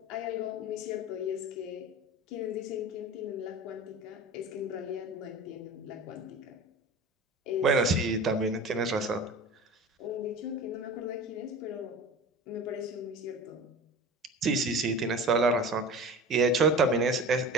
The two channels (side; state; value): both; normal; correlation 0.35